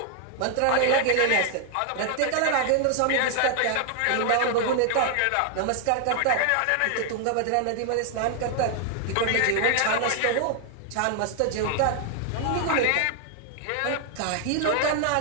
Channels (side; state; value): both; different; correlation 0.00